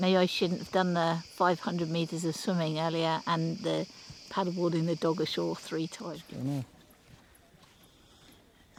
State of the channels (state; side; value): identical; both; correlation 1.00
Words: Maybe I shouldn't have done the 500 metres of swimming earlier and the paddleboarding the dog ashore 3 times.